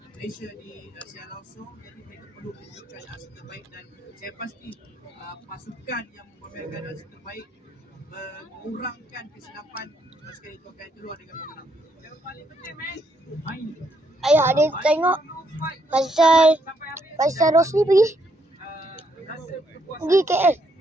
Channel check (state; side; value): normal; both; correlation 0.74